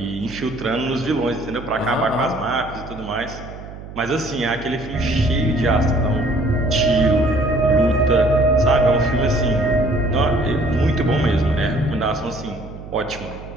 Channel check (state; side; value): noise; right; hum, 14 dB below the sound